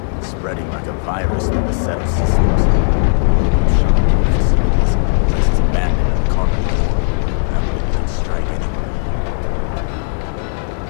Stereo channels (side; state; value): right; silent; digital silence